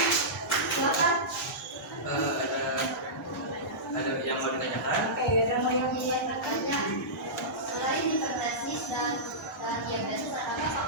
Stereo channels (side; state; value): both; normal; correlation -0.16